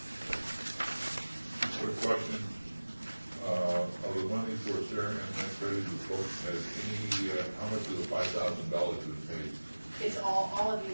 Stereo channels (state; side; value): inverted; both; correlation -1.00